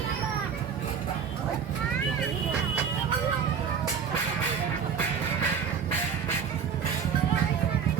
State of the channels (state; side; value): quieter; left; 7.0 dB